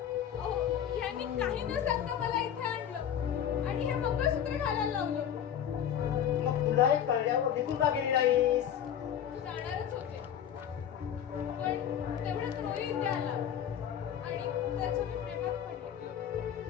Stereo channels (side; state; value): right; quieter; 9.3 dB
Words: अहो यांनी काही न सांगता मला इथे आणलं आणि हे मंगळसूत्र घालायला लावलं. मग तुलाही कळल्यावर निघून का गेली नाहीस? जाणारच होते पण तेवढ्यात रोही इथे आला आणि त्याच्या मी प्रेमात पडले.